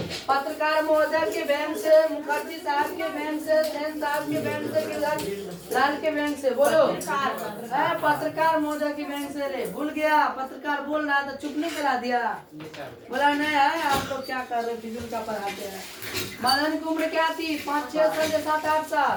पत्रकार महोदय के बैंक से, मुखर्जी साहब के बैंक से, सेन साहब के बैंक से, गिरधर लाल के बैंक से? बोलो। पत्रकार महोदय के बैंक से। ले भूल गया, पत्रकार बोल रहा था, चुप नहीं करा दिया। बोला नहीं है, आप लोग क्या कर रहे, फिजूल का पढ़ाते हैं। मदन की उम्र क्या थी? 5, 6 साल या 7, 8 साल?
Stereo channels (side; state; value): both; identical; correlation 1.00